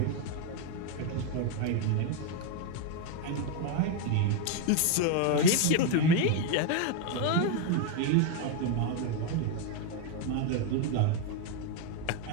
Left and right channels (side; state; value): both; different; correlation 0.01